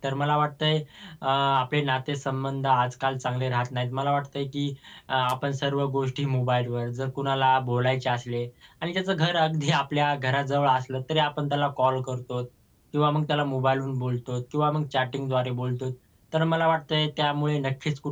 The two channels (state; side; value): identical; both; correlation 1.00